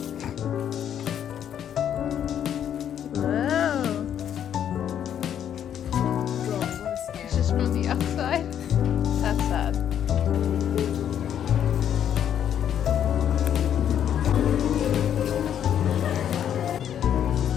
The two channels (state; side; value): quieter; right; 9.6 dB